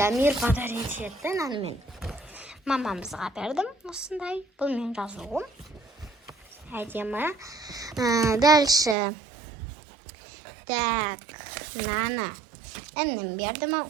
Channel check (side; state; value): left; drops out; at 9.0 s